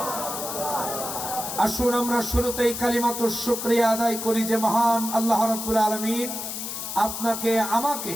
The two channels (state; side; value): noise; left; hiss, 6 dB below the sound